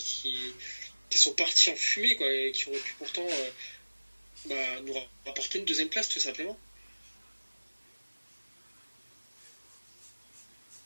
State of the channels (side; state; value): both; inverted; correlation -1.00